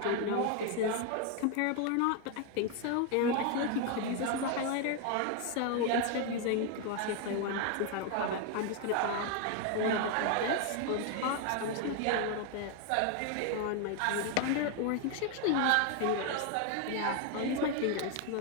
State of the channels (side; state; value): both; different; correlation 0.01